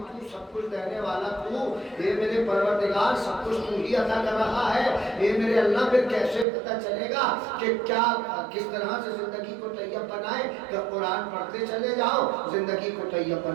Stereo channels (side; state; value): left; drops out; at 6.5 s